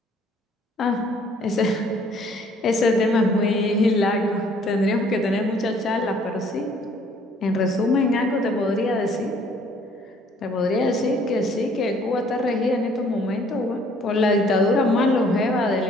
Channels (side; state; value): both; normal; correlation 0.60